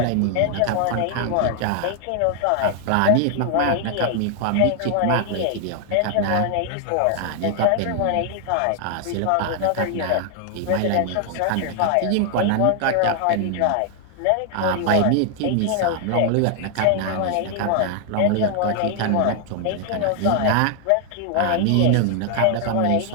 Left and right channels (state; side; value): different; both; correlation 0.00